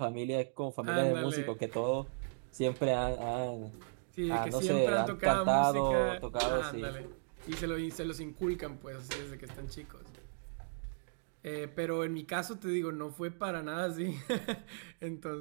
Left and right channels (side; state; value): left; silent; digital silence